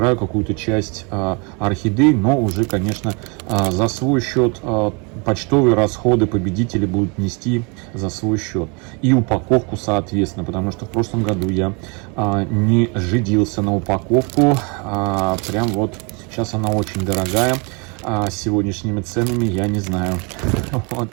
какую-то часть орхидей, но уже, конечно, за свой счет. Почтовые расходы победители будут нести за свой счет. И упаковку, соответственно, потому что в прошлом году я не жидился на упаковку. Прям вот сейчас она очень дорогая. С сегодняшними ценами я не знаю.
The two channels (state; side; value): quieter; left; 31.7 dB